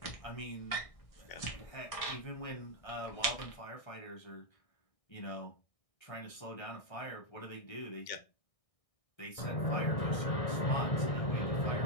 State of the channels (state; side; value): late; right; 1.6 ms